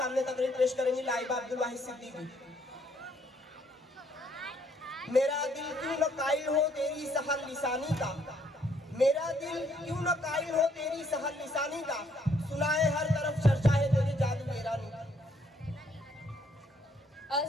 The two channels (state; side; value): normal; both; correlation 0.68